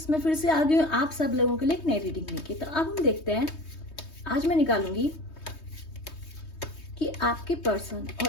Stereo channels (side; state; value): right; late; 3.2 ms